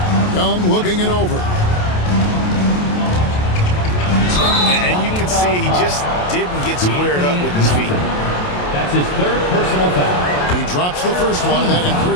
Young looking it over. And you can see he just didn't get squared up with his feet. That's his third personal foul. He drops the first one, and that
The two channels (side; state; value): right; late; 28 ms